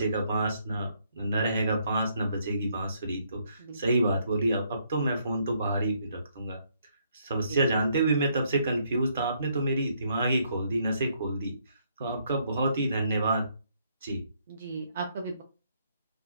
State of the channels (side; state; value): both; inverted; correlation -0.71